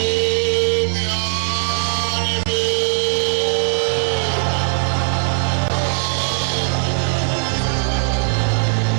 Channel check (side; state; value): left; silent; 67 dB below the other